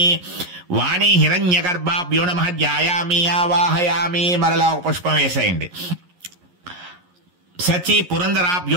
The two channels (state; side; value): late; left; 11 ms